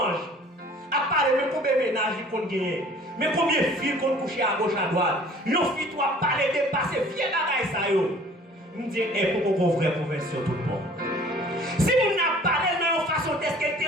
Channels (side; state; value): both; normal; correlation 0.51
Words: À parler de combien de ménages qu'on gagne. Mais combien de filles qu'on couche à gauche à droite. Nos filles, toi, parler de passer, viens bagaille ça yo. Je me dis, pour qu'on vraie conversion tout le monde. Si vous n'avez pas parlé de la façon d'être qu'elle te